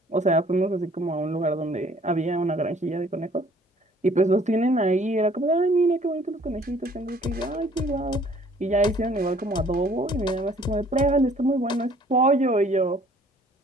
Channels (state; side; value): normal; both; correlation 0.57